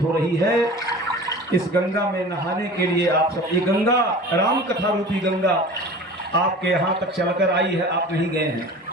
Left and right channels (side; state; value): both; normal; correlation 0.39